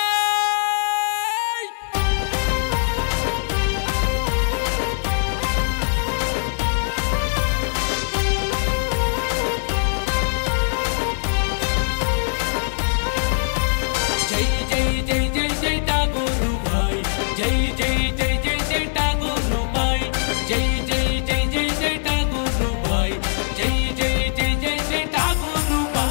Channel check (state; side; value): silent; right; 62 dB below the other